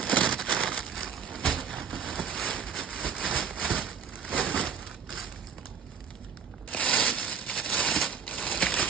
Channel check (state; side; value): quieter; left; 6.8 dB